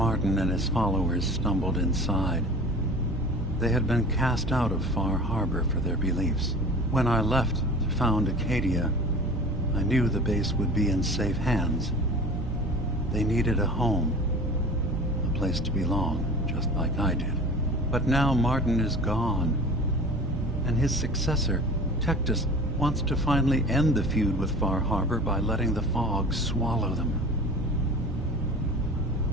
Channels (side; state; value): both; normal; correlation 0.40